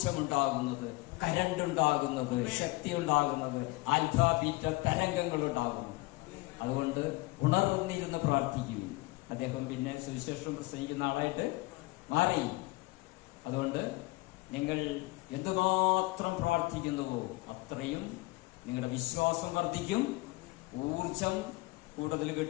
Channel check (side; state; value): right; quieter; 21.8 dB